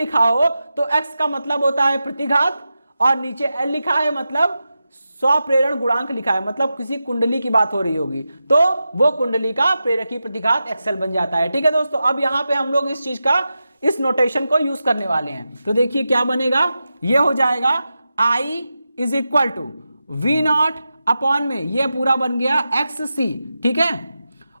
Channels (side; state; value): both; inverted; correlation -0.91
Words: हो तो X का मतलब होता है प्रतिघात और नीचे L लिखा है मतलब स्वप्रेरण गुणांक लिखा है, मतलब किसी कुंडली की बात हो रही होगी तो वो कुंडली का प्रेरकी प्रतिघात XL बन जाता है। ठीक है दोस्तों, अब यहां पे हम लोग इस चीज का, इस नोटेशन को यूज करने वाले हैं। तो देखिए क्या बनेगा, ये हो जाएगा I is equal to V0 upon में ये पूरा बन गया XC। ठीक है,